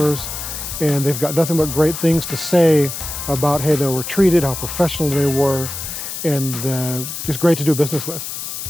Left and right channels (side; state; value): left; noise; hiss, 7 dB below the sound